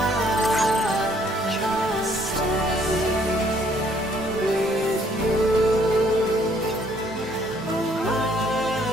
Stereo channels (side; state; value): both; normal; correlation 0.64